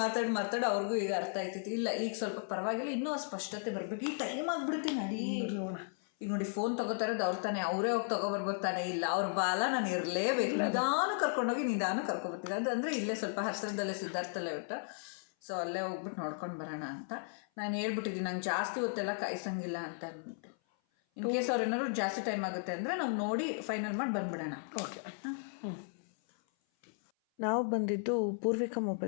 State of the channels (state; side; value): silent; right; 54 dB below the other